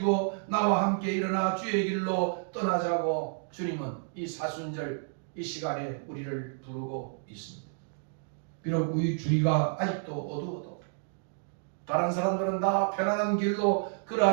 나와 함께 일어나 주의 길로 떠나자고 주님은 이 사순절 이 시간에 우리를 부르고 있습니다. 비록 우리 주위가 아직도 어두워도 다른 사람들은 다 편안한 길로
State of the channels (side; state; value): left; silent; digital silence